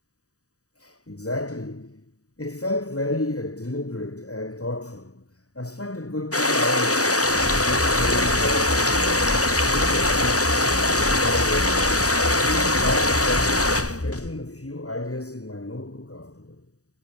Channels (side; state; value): right; late; 0.66 ms